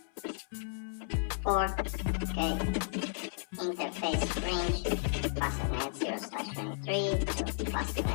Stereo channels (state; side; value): silent; right; 55 dB below the other